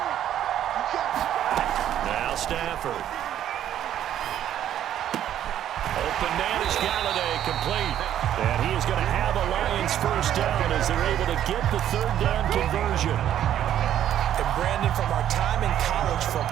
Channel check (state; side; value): quieter; left; 11.0 dB